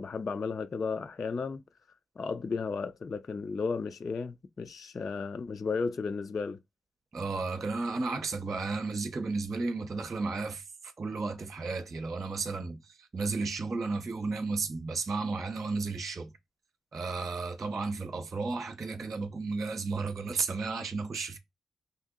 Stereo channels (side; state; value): both; normal; correlation 0.83